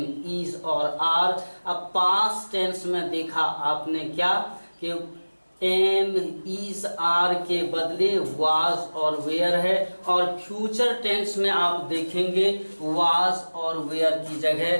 इज और आर। अब पास्ट टेंस में देखा आपने क्या कि एम, इज, आर के बदले वाज और वेयर है। और फ्यूचर टेंस में आप देखेंगे वाज और वेयर की जगह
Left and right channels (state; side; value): inverted; both; correlation -1.00